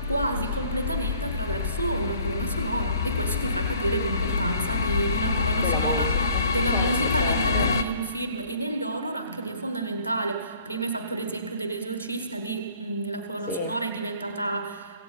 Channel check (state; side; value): inverted; both; correlation -0.56